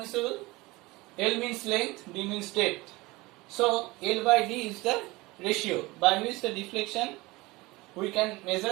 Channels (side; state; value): left; quieter; 21.9 dB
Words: L means length, D means depth. So L by D is the ratio by which the deflection, we can